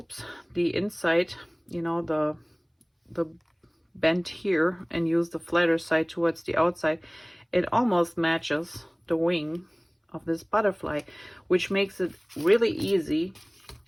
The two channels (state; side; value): identical; both; correlation 1.00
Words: the inside, you know, the bend here, and use the flatter side towards the outside, it almost matches the wing of this butterfly, which makes it really easy